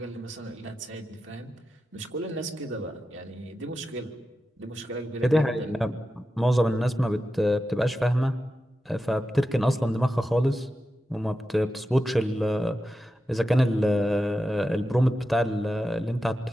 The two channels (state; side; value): normal; both; correlation 0.91